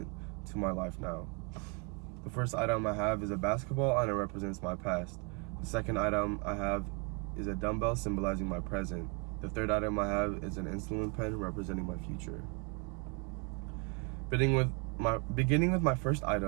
to my life now. The first item I have is a basketball, and it represents my past. The second item I have is a dumbbell, symbolizing my present. The third item I have is an insulin pen, representing my future. Beginning with my first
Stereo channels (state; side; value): quieter; left; 31.6 dB